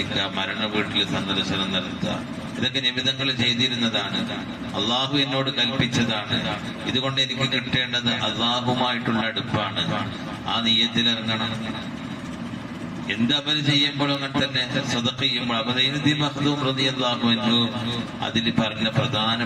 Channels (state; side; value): identical; both; correlation 1.00